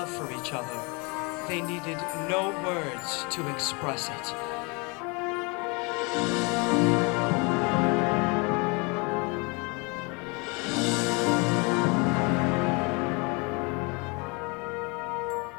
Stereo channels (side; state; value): right; quieter; 30.2 dB